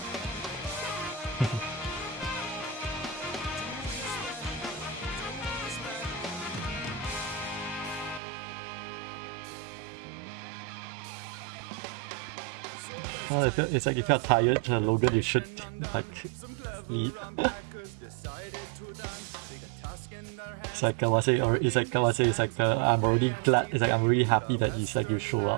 Well, it's like if you're tired, Logan, you should like sleep. It's like I say, or it's like I say, it's like I'm already glad. It's like I'm really happy that it's like you show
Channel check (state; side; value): drops out; left; at 8.2 s